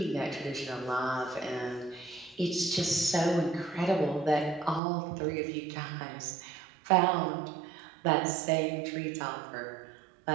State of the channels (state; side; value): drops out; left; at 4.8 s